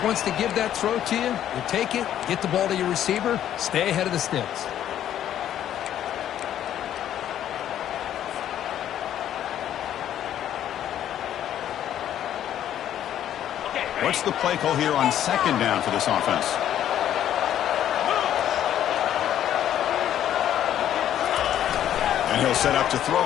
wants to give that throw to you. You take it, get the ball to your receiver, stay ahead of the sticks. What's the play call here on second down for this offense? And he'll set up to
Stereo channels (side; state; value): right; quieter; 11.0 dB